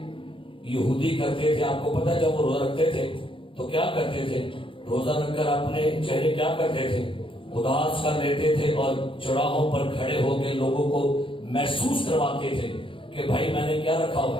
یہودی کرتے تھے، آپ کو پتا ہے جب وہ روزہ رکھتے تھے تو کیا کرتے تھے؟ روزہ رکھ کر اپنے چہرے کیا کرتے تھے؟ اداس کر لیتے تھے اور چوراہوں پر کھڑے ہو کے لوگوں کو محسوس کرواتے تھے کہ بھائی میں نے کیا رکھا ہوا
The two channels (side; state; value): right; late; 0.25 ms